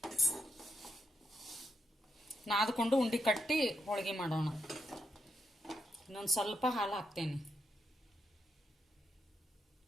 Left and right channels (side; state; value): both; normal; correlation 0.80